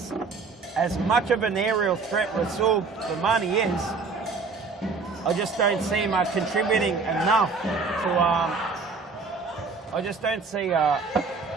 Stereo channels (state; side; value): quieter; left; 4.5 dB